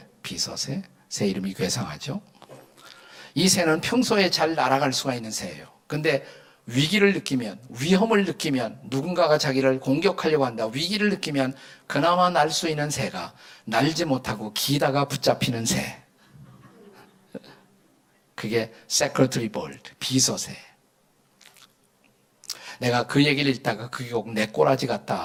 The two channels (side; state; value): both; identical; correlation 1.00